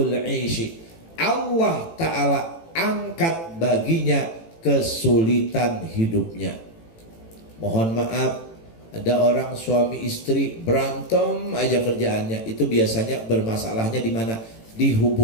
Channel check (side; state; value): right; late; 18 ms